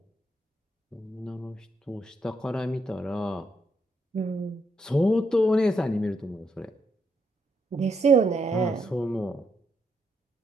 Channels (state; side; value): normal; both; correlation 0.78